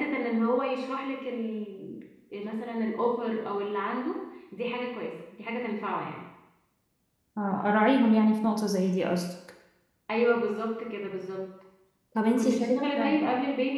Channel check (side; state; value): both; identical; correlation 1.00